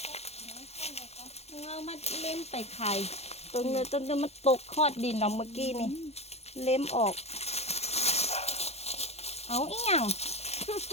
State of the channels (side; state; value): right; late; 0.31 ms